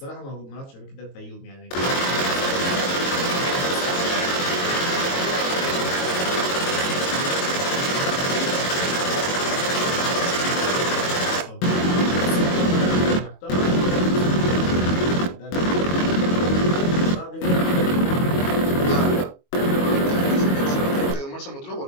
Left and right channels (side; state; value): right; late; 22 ms